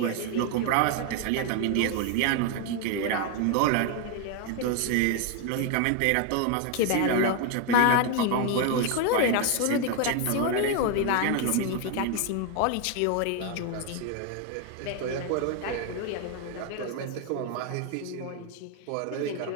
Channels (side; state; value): both; different; correlation 0.01